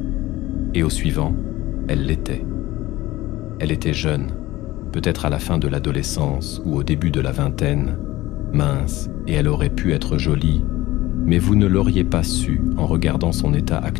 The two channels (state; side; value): quieter; right; 17.6 dB